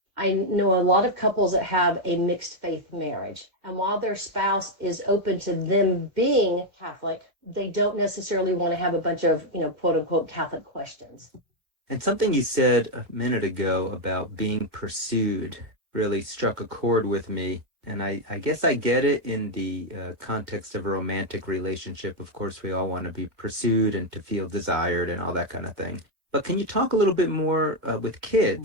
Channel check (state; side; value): late; left; 2.0 ms